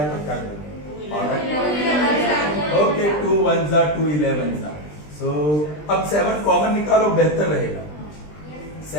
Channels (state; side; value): late; right; 20 ms